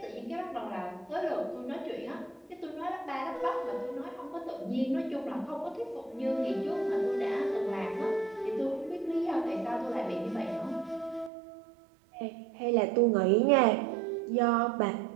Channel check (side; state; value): left; drops out; at 11.3 s